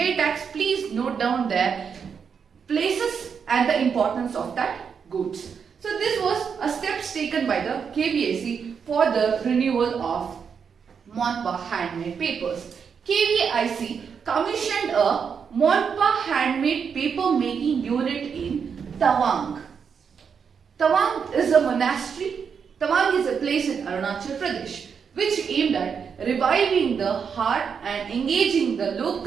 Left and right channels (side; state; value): left; quieter; 6.6 dB